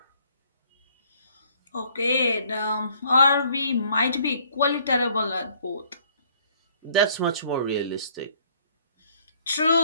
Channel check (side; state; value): both; inverted; correlation -0.62